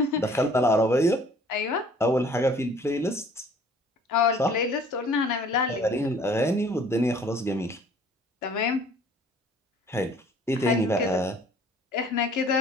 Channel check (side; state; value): both; normal; correlation 0.54